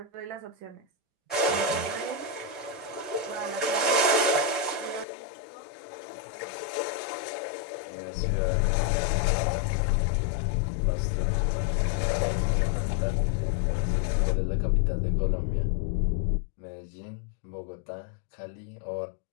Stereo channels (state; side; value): drops out; right; at 5.1 s